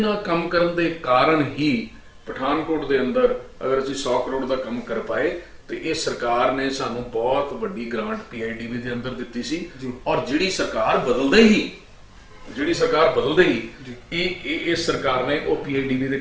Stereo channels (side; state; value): both; identical; correlation 1.00